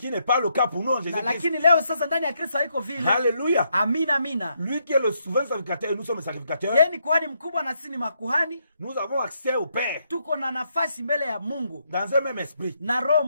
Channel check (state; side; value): inverted; both; correlation -0.77